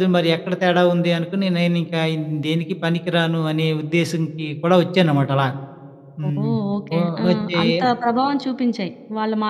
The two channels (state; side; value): identical; both; correlation 1.00